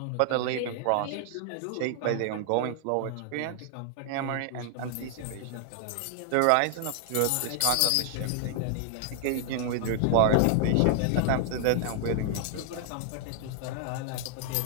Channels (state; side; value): different; both; correlation 0.00